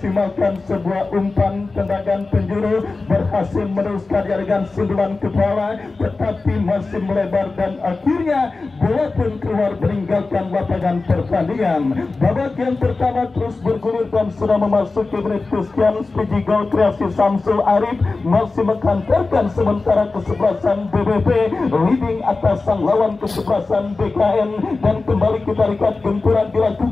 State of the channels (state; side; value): quieter; right; 3.7 dB